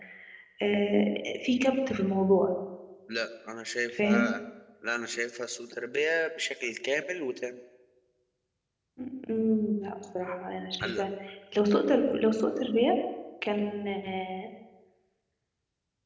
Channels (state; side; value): identical; both; correlation 1.00